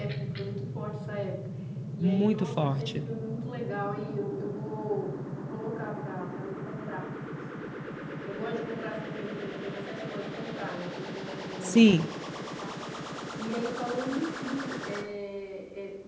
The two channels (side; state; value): both; identical; correlation 1.00